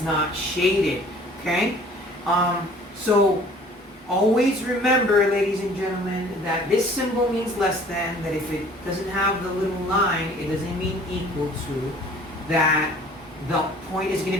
not shaded, okay? So always remember, ladies and gentlemen, that this symbol means less than, that if it doesn't have the little line, it doesn't mean equal to, that the point is going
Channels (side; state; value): both; normal; correlation 0.51